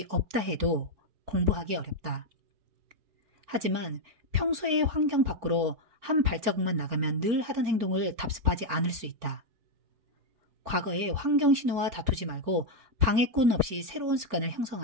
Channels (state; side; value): late; left; 4.4 ms